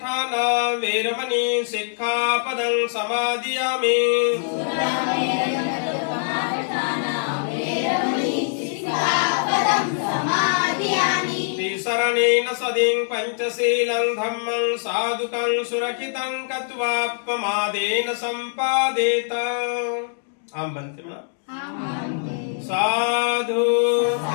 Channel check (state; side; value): silent; right; digital silence